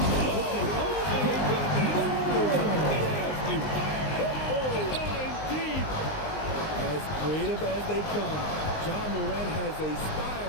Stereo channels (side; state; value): right; late; 19 ms